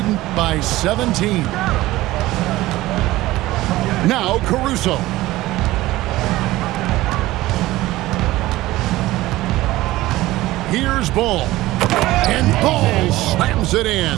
by 17. Now Caruso. Here's Ball. And Ball slams it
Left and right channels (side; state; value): left; quieter; 17.4 dB